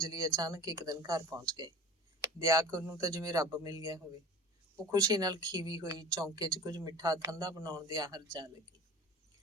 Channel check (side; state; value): both; normal; correlation 0.40